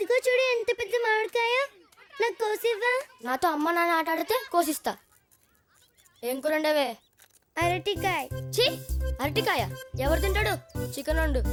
చూడు ఎంత పెద్ద మామిడికాయ, నాకు కోసివ్వా. నాతో అమ్మ నాన్న ఆట ఆడితే కోసిస్తా. ఏం కూరండవే? అరటికాయ. ఛీ, అరటికాయ ఎవరు తింటాడు? చికెన్ వండు.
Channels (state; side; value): identical; both; correlation 1.00